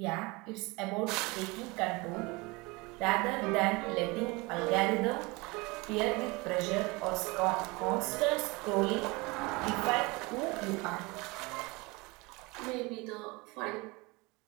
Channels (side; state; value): left; quieter; 25.1 dB